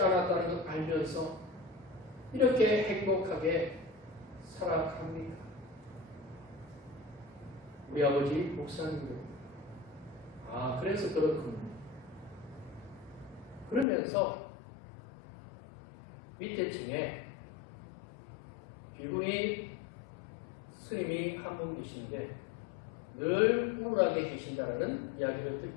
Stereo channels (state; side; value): drops out; right; at 13.9 s